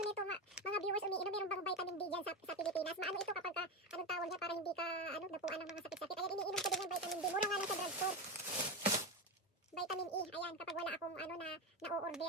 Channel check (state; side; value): normal; both; correlation 0.16